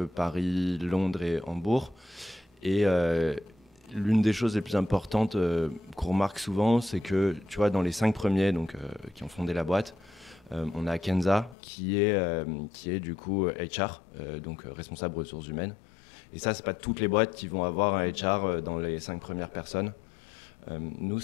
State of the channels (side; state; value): right; drops out; at 11.6 s